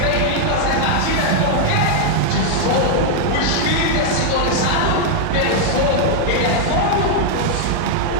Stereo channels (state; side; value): different; both; correlation 0.00